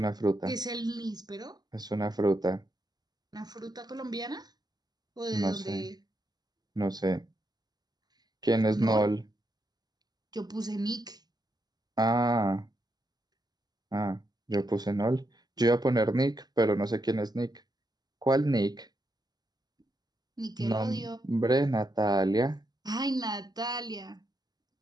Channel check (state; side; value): late; left; 0.20 ms